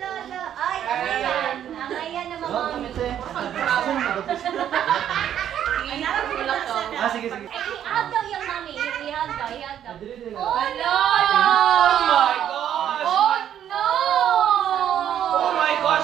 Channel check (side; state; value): left; quieter; 10.2 dB